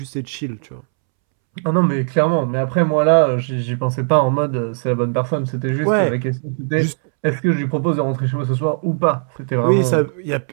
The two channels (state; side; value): silent; left; 67 dB below the other